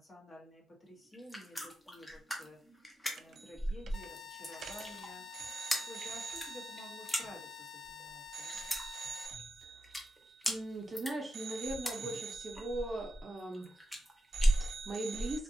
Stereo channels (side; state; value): both; normal; correlation 0.89